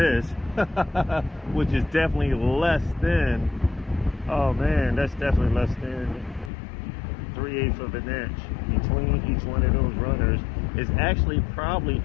which is definitely less than, oh man, that's definitely less than 3/8 of an inch between each one of those runners. Is actually probably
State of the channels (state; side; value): drops out; right; at 6.5 s